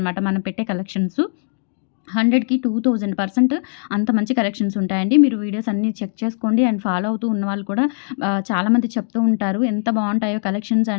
మనం పెట్టే కలెక్షన్స్. 100కి 2000% అంత మంచి కలెక్షన్స్ ఉంటాయండి. మీరు వీడియోస్ అన్నీ చెక్ చేసుకోండి. అండ్ ఫాలో అవుతూ ఉన్నవాళ్ళు కూడా చాలామంది చెప్తూ ఉంటారు. ఎంత బావుంటాయో కలెక్షన్స్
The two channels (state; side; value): silent; right; digital silence